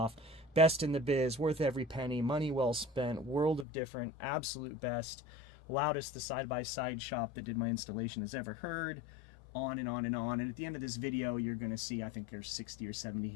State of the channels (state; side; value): drops out; right; at 3.7 s